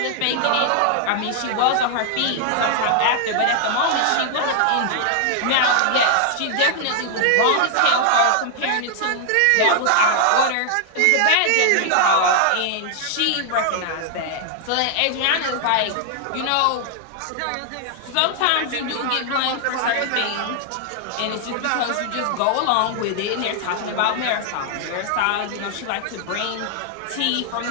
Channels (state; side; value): different; both; correlation 0.00